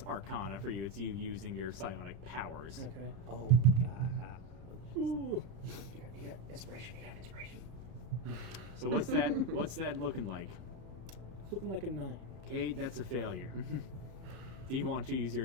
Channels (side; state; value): left; late; 33 ms